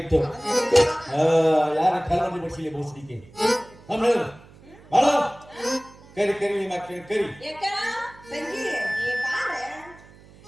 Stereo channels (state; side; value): noise; right; hum, 23 dB below the sound